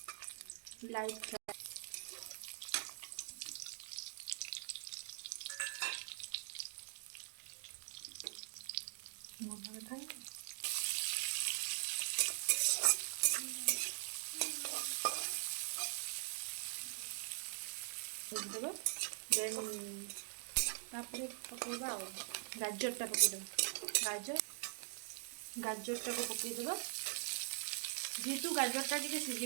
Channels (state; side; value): silent; left; digital silence